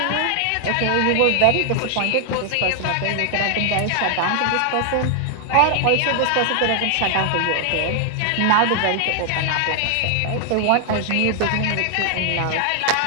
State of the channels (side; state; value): both; different; correlation 0.00